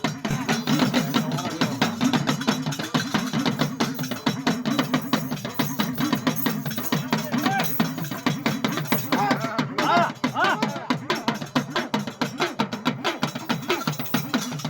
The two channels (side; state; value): both; identical; correlation 1.00